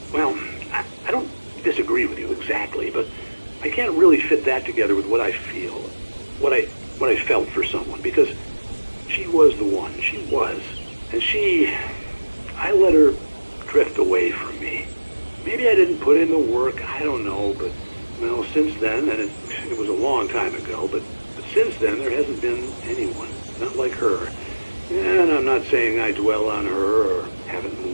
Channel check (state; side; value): inverted; both; correlation -1.00